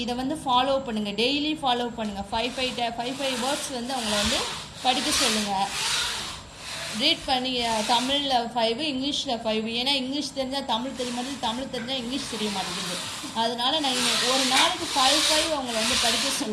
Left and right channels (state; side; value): identical; both; correlation 1.00